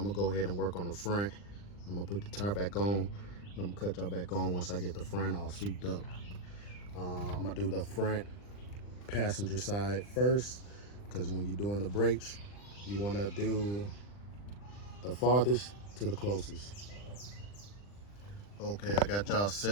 gonna go ahead and work on the front. I'm gonna put the tire back on, and I'm gonna cut y'all back on once I get the front all souped up. I'm gonna do the front passenger side first, because when you're doing the brakes, you wanna do the farthest to the closest. Okay, I got y'all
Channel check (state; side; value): late; right; 40 ms